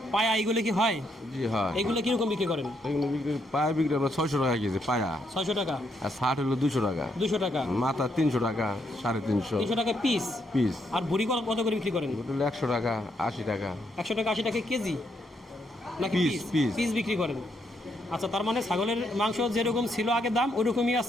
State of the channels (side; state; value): both; normal; correlation 0.76